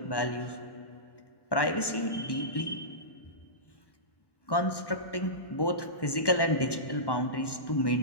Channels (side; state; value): right; late; 1.1 ms